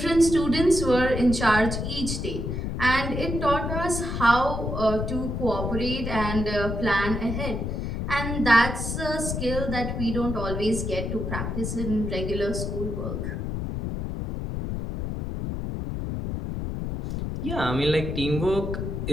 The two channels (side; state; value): left; noise; rumble, 3 dB below the sound